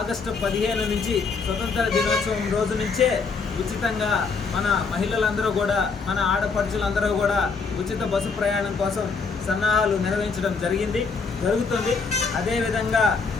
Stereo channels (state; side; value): quieter; right; 4.8 dB